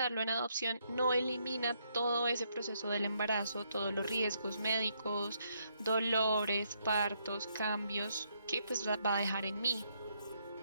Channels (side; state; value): both; inverted; correlation -0.74